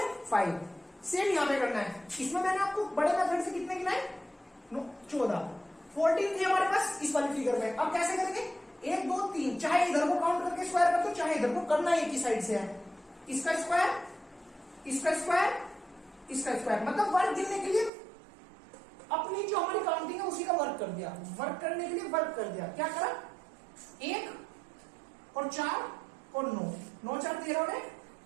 5। सेम यहां पे करना है। इसमें मैंने आपको बड़े मेथड से कितने गिनाए? 14। 14 थे हमारे पास इस वाली फिगर में। अब कैसे करेंगे? 1 2 3, चाहे इधर को काउंट करके स्क्वायर कर दो, चाहे इधर को करना एक ही साइड से है। इसका स्क्वायर, इसका स्क्वायर, इसका स्क्वायर, मतलब वर्क गिनने के लिए अपनी जो हमारी काउंटिंग है उसी का वर्क कर दिया। वर्क करने के लिए वर्क कर दिया। क्या करा? 1 और 4 और 9, 9 4 13 और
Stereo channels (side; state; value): left; drops out; at 17.9 s